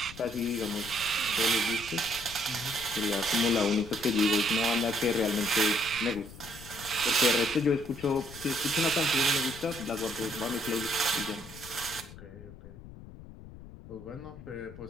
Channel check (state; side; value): noise; left; rumble, 16 dB below the sound